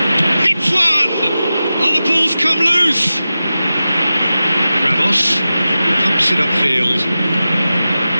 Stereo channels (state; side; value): inverted; both; correlation -0.94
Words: Hits one! Oh, the ball's come loose. Ramos pumps it upfield.